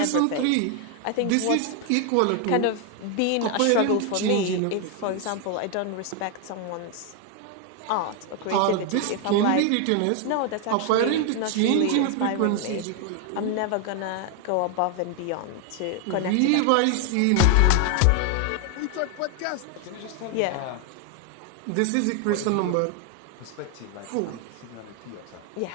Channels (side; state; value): both; different; correlation 0.01